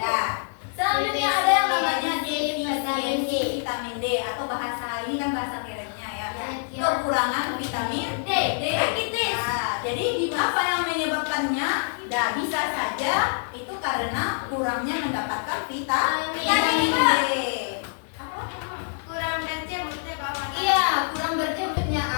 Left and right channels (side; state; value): right; silent; 61 dB below the other